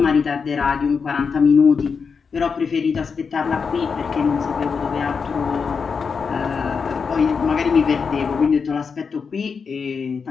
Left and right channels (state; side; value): quieter; right; 5.6 dB